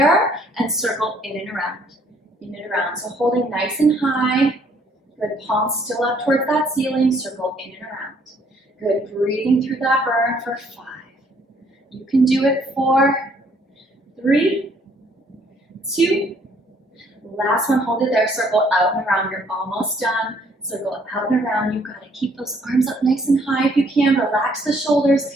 and circle in and around. In and around. So holding nice and high. Good. Palms still up towards that ceiling. Circle in and around. Good. Breathing through that burn for 5. You can do it. 4, 3, 2. Last one. Hold it there. Circle out and around. You're almost done. Circle out and around. You've got to keep those arms up nice and high if you can. Relax the shoulders.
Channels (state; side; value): normal; both; correlation 0.64